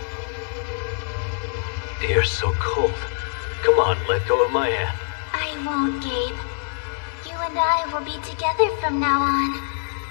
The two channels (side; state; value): right; silent; 58 dB below the other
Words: You're so cold. Come on, let go of my hand. I won't, Gabe. You and I will be together from now on.